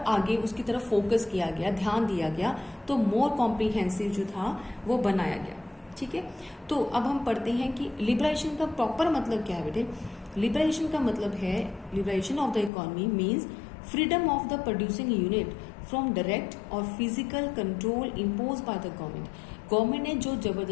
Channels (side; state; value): right; drops out; at 12.7 s